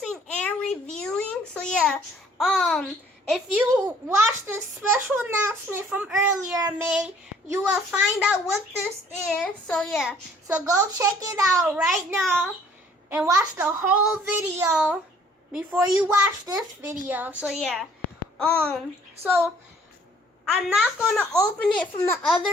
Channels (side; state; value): both; normal; correlation 0.58